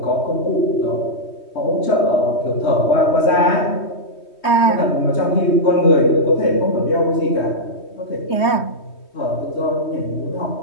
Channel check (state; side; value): late; right; 3.2 ms